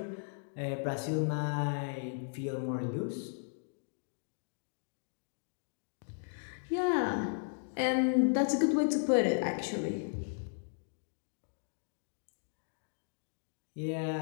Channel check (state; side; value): silent; right; digital silence